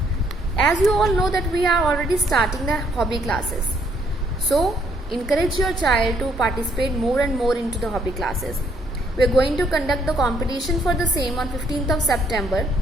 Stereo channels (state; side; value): normal; both; correlation 0.68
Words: As you all know that we are already starting the hobby classes. So, encourage your child to participate more and more into the hobby classes. We are going to conduct the competition for the same on 15th of September.